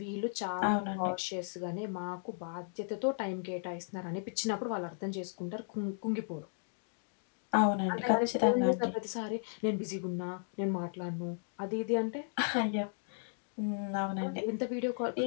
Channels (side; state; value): right; silent; digital silence